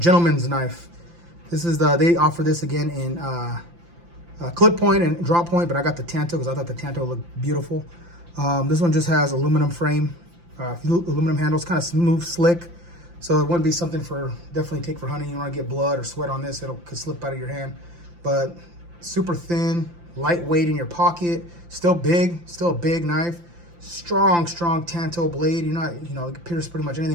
knife. This is they offer this again in clip point and drop point, but I got the Tanto because I thought the Tanto looked beautiful. This one just has aluminum frame, aluminum handles, kind of smooth, slick. So it wouldn't be something definitely take for hunting. You don't want to get blood or sweat on this, could slip out of your hand. But super thin, lightweight in your pocket, still a big knife. Strong Tanto blade. You're not, you know, it can pierce pretty much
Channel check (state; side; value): late; left; 5.8 ms